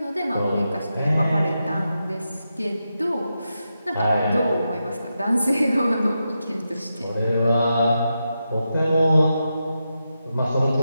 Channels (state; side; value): inverted; both; correlation -0.88